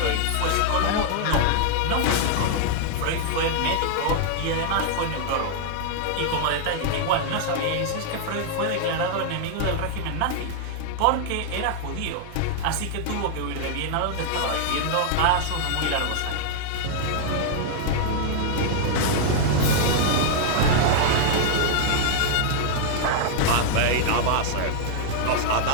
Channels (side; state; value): both; different; correlation -0.01